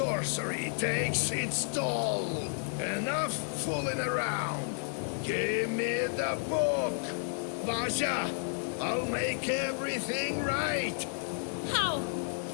takes its toll. Enough fooling around. Give me the book. Vasha, I'll make everything right. How?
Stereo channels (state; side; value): silent; right; 57 dB below the other